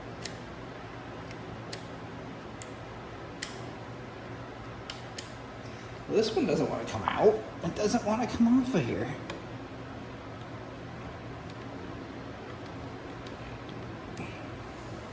Well, this one doesn't want to come out. It doesn't want to come off of here.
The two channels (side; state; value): both; identical; correlation 1.00